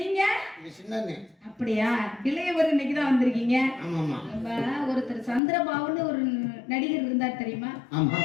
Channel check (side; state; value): right; drops out; at 5.4 s